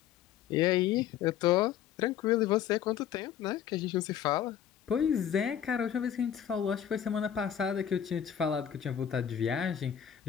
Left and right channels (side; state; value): right; quieter; 9.6 dB